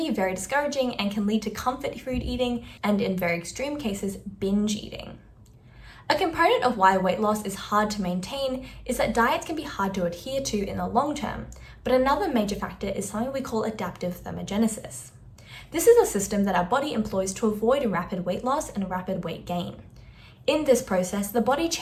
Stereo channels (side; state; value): both; identical; correlation 1.00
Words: very discouraging and can lead to comfort food eating and, in very extreme cases, binge eating. A component of why weight loss is hard to maintain is that diets can be hard to adhere to in the long term, but another major factor is something we call adaptive thermogenesis. This is a system that our body employs to avoid rapid weight loss and rapid weight gain. In this process, the body